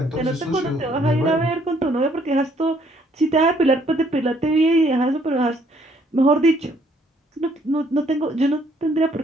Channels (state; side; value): normal; both; correlation 0.66